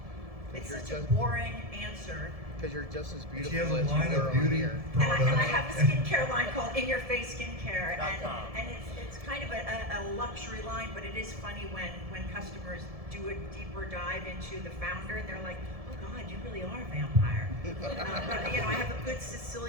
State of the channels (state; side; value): late; left; 1.7 ms